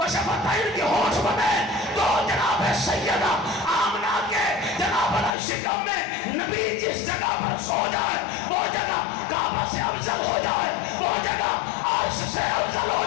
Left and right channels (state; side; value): drops out; right; at 5.4 s